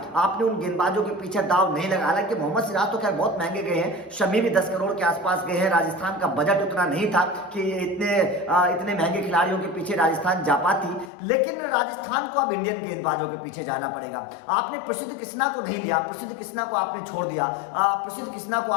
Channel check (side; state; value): right; drops out; at 11.1 s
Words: आपने उन गेंदबाजों के पीछे दाव नहीं लगा। हालांकि मोहम्मद सिराज तो खैर बहुत महंगे गए हैं, शमी भी 10 करोड़ के आसपास गए हैं। राजस्थान का बजट उतना नहीं था कि इतने महंगे खिलाड़ियों के पीछे राजस्थान जा पाती, लेकिन राजस्थान को अब इंडियन गेंदबाजों के पीछे जाना पड़ेगा। आपने प्रसिद्ध कृष्णा को नहीं लिया, प्रसिद्ध कृष्णा को आपने छोड़ दिया, प्रसिद्ध कृष्णा को